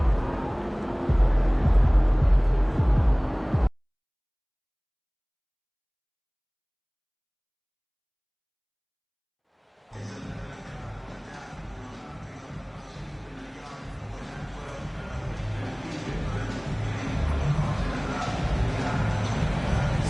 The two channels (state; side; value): identical; both; correlation 1.00